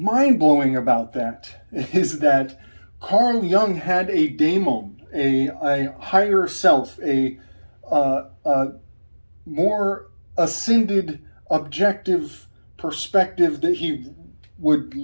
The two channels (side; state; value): both; inverted; correlation -1.00